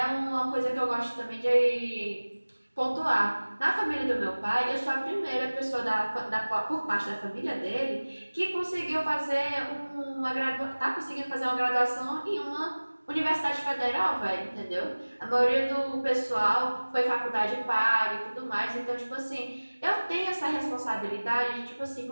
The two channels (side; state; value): both; inverted; correlation -1.00